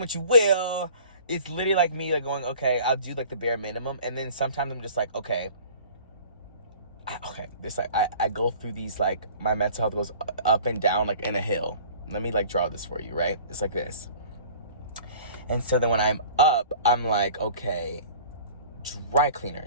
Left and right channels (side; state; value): both; inverted; correlation -0.46